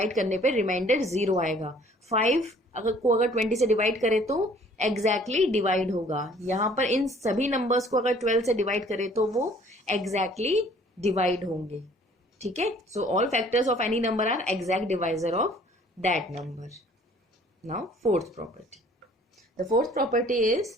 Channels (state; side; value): normal; both; correlation 0.55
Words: करने पे रिमाइंडर 0 आएगा। 5 अगर 20 से डिवाइड करें तो एग्जैक्टली डिवाइड होगा। यहाँ पर इन सभी नंबर्स को अगर 12 से डिवाइड करें तो वो एग्जैक्टली डिवाइड होंगे, ठीक है। So all factors of any number are exact divisor of that number. Now fourth property, the fourth property is